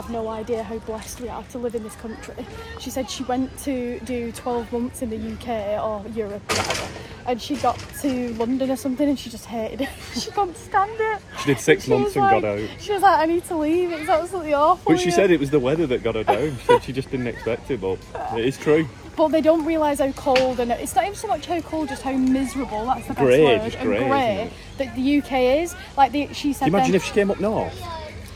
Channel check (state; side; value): identical; both; correlation 1.00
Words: no idea how blessed we are to live in this country. She said she went to do 12 months in the UK or Europe or whatever, and she got to London or something and she just hated it. She couldn't stand it. She did 6 months was and like, got out. She was like, I need to leave, it's absolutely awful. But she said it was the weather that got her down. She said she just didn't expect it, but it is true. But they don't realise how cold, and it's not even so much how cold, just how miserable, that's the best Grey, word, just and grey, grey that the UK is. Like, she said Can you imagine then, if she came up north?